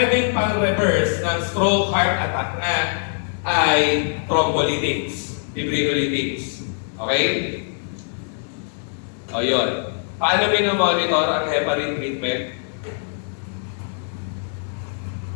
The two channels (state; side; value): silent; right; digital silence